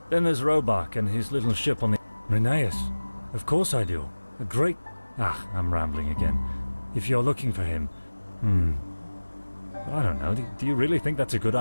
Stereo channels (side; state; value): both; inverted; correlation -1.00